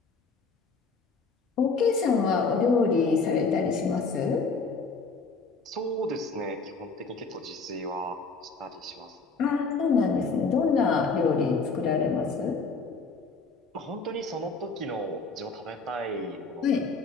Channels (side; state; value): right; quieter; 4.3 dB